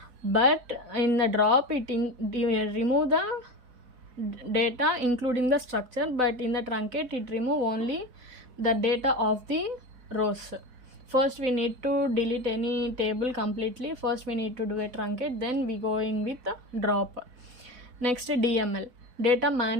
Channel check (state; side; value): late; left; 4.2 ms